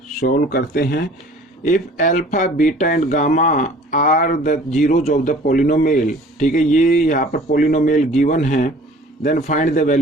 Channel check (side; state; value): both; normal; correlation 0.49